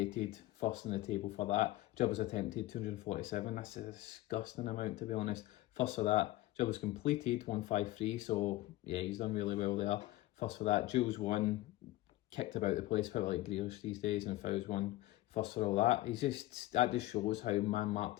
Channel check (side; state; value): right; quieter; 17.3 dB